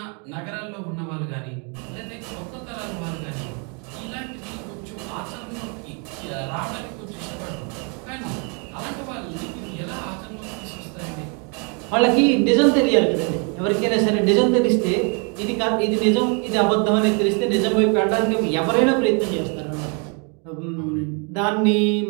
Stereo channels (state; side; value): quieter; left; 36.0 dB